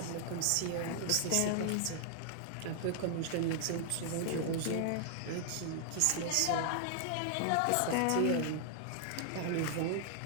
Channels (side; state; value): both; different; correlation 0.00